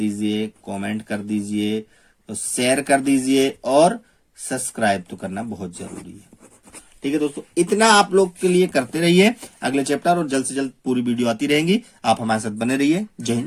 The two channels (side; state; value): both; identical; correlation 1.00